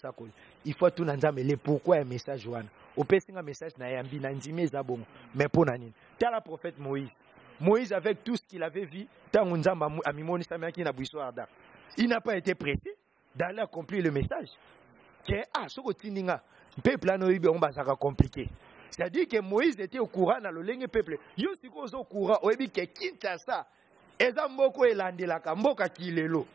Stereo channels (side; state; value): left; quieter; 6.0 dB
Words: Il faut tout nzamba le pourquoi un message wana. Opesa un message na yambi na nzime zabongo. Mais pour nani? T'as la prophète Moïse. Moïse avec tout ce qu'il avait vu, tant nzamba amimoni samaki na buiso arda. Il n'a pas été pressé d'aller accomplir le message. Que soko tininga peuple anoibe on basaka compliqué. C'est-à-dire que Moïse était au courant dans le ligne peuple. Yo siko zo courant oyebi ke Kinshasa eza mboko elandelaka mboka kilelo.